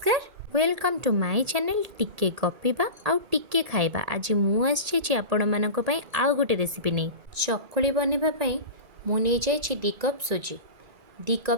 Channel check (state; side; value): late; left; 1.8 ms